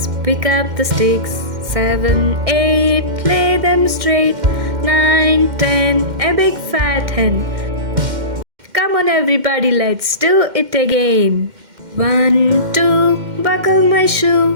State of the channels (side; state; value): left; late; 2.1 ms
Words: pick up the sticks. 7, 8, lay them straight. 9, 10, a big fat hen. Come on everybody, let's do it again. 1, 2, buckle my